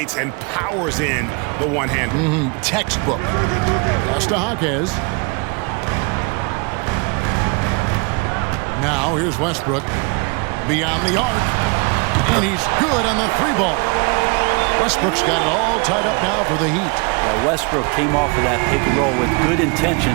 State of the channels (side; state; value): left; quieter; 31.5 dB